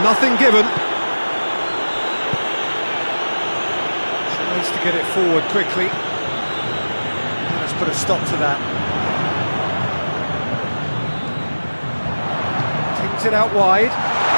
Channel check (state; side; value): inverted; both; correlation -1.00